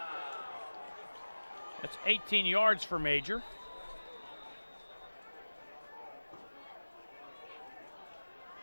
That's 18 yards for Major.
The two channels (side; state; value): both; inverted; correlation -1.00